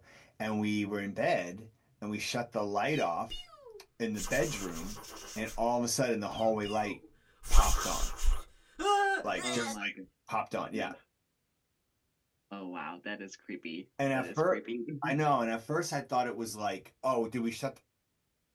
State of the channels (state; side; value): identical; both; correlation 1.00